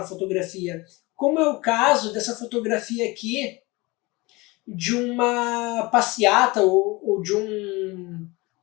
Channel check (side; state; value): right; quieter; 23.7 dB